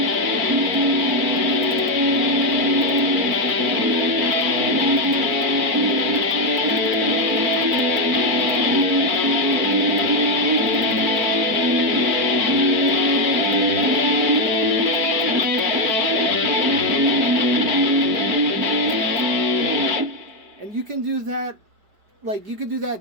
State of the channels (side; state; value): left; late; 4.5 ms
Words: you can do that, like, you can do